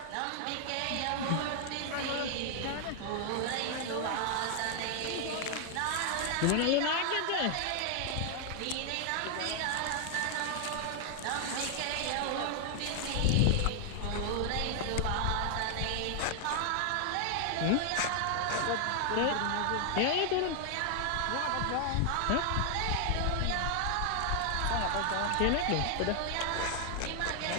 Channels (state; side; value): different; both; correlation 0.00